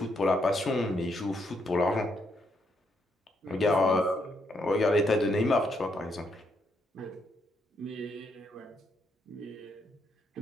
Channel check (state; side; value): normal; both; correlation 0.76